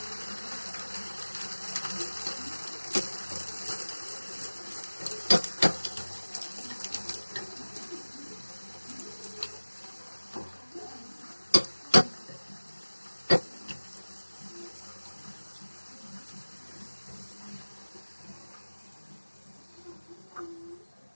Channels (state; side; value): inverted; both; correlation -1.00